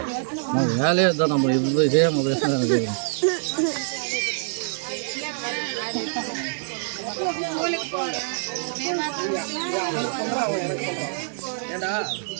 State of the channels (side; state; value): left; silent; digital silence